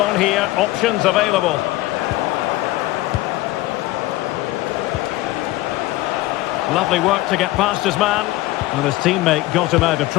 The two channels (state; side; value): quieter; right; 18.0 dB